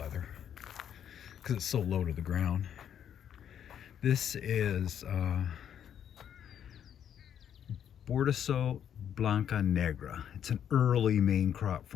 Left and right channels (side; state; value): right; quieter; 9.2 dB